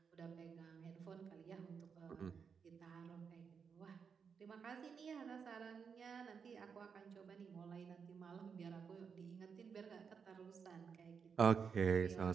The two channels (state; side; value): quieter; left; 6.2 dB